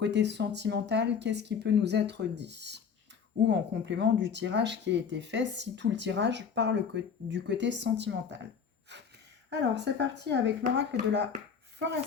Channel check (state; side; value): quieter; right; 6.6 dB